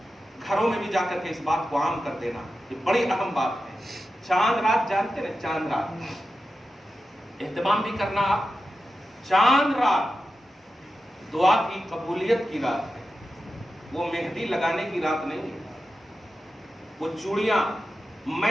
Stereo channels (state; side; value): normal; both; correlation 0.91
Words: گھروں میں بھی جا کر کے اس بات کو عام کر دینا، یہ بڑی اہم بات ہے. چاند رات جانتے نا، چاند رات اہتمام بھی کرنا. آپ چاند رات دعا کی قبولیت کی رات ہے، وہ مہندی لگانے کی رات نہیں ہے، وہ چوڑیاں